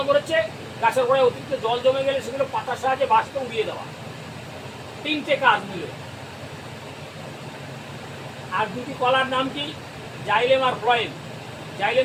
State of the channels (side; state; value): both; identical; correlation 1.00